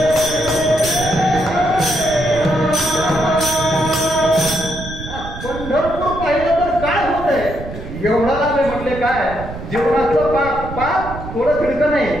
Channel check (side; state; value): right; noise; rumble, 10 dB below the sound